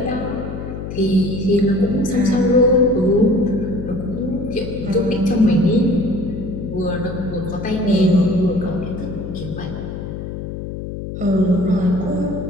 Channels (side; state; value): left; noise; hum, 7 dB below the sound